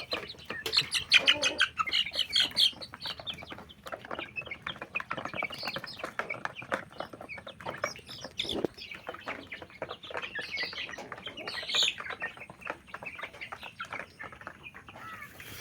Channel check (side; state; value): both; identical; correlation 1.00